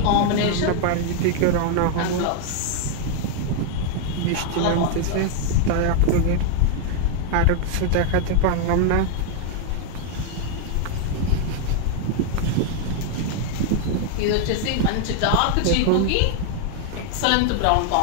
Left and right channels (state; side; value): different; both; correlation 0.00